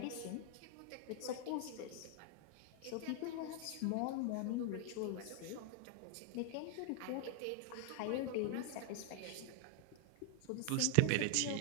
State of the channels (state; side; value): different; both; correlation 0.00